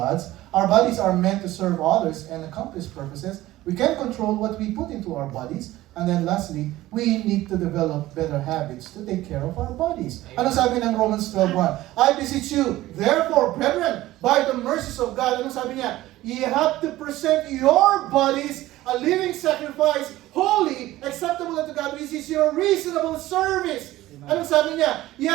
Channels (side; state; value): left; quieter; 16.3 dB